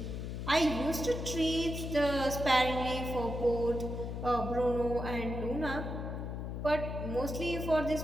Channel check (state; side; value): noise; left; hum, 5 dB below the sound